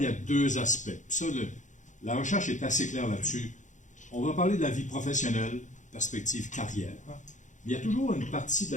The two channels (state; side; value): late; right; 0.36 ms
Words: il y a deux aspects. Puis ça, la recherche est assez claire là-dessus. On va parler de la vie professionnelle, perspective carrière. Mais il y a toujours une partie de